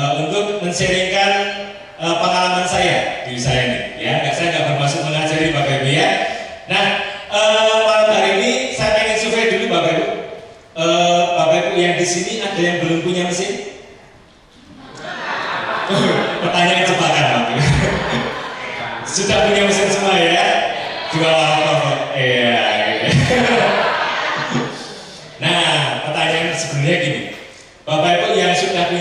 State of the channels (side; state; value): both; identical; correlation 1.00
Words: untuk men-sharingkan pengalaman saya di usaha ini. Ya, saya nggak bermaksud mengajari Bapak Ibu ya. Nah, malam hari ini saya pengen survei dulu Bapak Ibu. Bapak Ibu yang di sini ada yang belum punya mesin? Pertanyaan jebakan Bapak Ibu. Sudah punya mesin semua ya? Dua laptop. Iya. Nah, pertanyaan sebenarnya gini. Bapak Ibu yang sudah